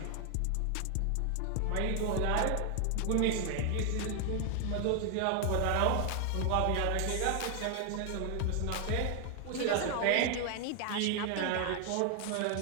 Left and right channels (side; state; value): both; different; correlation 0.00